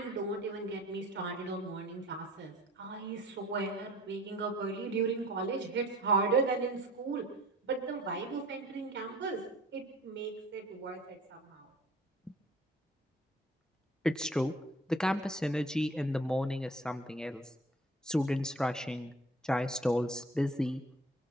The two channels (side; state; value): both; normal; correlation 0.48